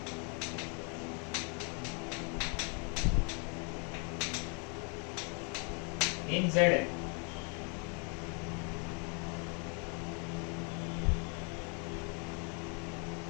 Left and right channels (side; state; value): right; quieter; 36.8 dB